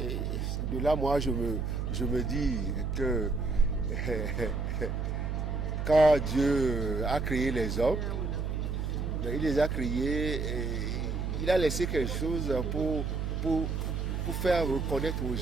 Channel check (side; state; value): right; noise; hum, 2 dB below the sound